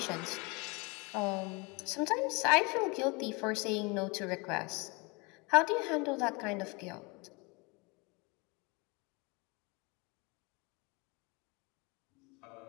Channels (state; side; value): quieter; right; 28.1 dB